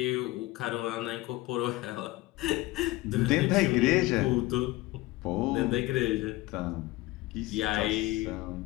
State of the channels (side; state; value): right; quieter; 19.3 dB